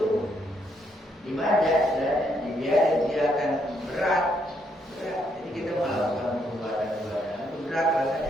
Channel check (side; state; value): both; normal; correlation 0.74